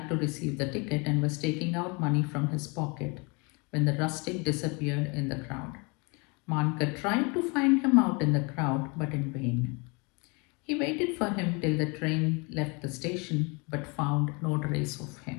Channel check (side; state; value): right; quieter; 30.3 dB